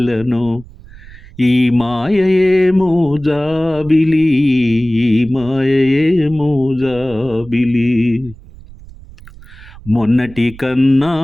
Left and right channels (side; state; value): right; noise; rumble, 20 dB below the sound